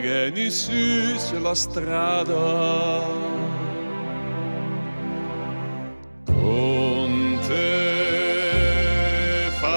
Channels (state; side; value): inverted; both; correlation -1.00